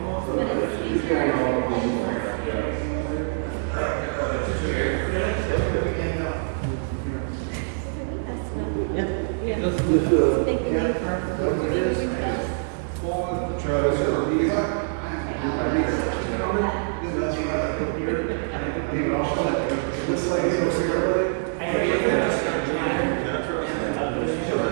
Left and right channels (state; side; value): silent; left; digital silence